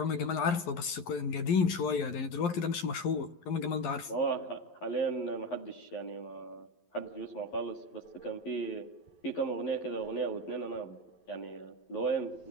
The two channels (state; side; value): late; right; 11 ms